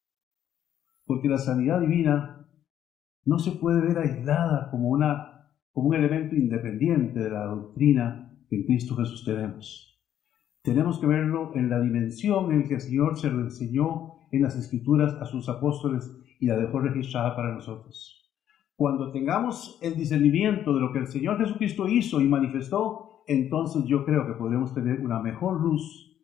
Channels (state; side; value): quieter; right; 10.6 dB